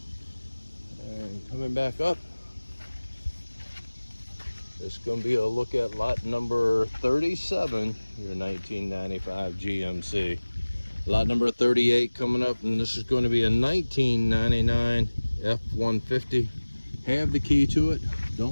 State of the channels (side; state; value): both; inverted; correlation -1.00